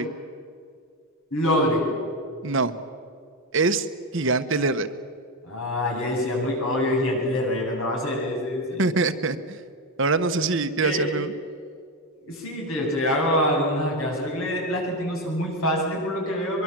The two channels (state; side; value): normal; both; correlation 0.12